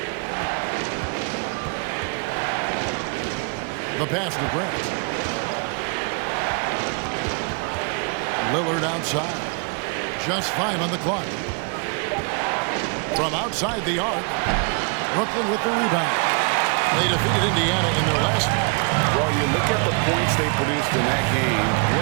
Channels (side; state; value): left; quieter; 36.0 dB